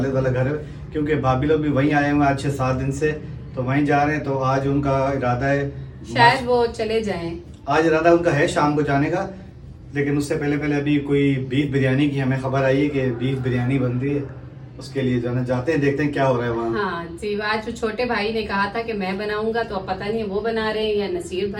वाला घर है। क्योंकि भाभी लोग भी वहीं आए हुए हैं आज 6-7 दिन से, तो वहीं जा रहे हैं। तो आज उनका इरादा है, शायद वो चले जाएं। आज इरादा उनका है शाम को जाने का। लेकिन उससे पहले पहले अभी कोई बीफ बिरयानी की हमें खबर आई है कि बीफ बिरयानी बन रही है। उसके लिए जाना जाते हैं, देखते हैं क्या हो रहा है वहाँ। हाँ जी, आज जो छोटे भाई ने कहा था कि मैं बनाऊंगा, तो अब पता नहीं वो बना रहे हैं या नसीर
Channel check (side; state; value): both; identical; correlation 1.00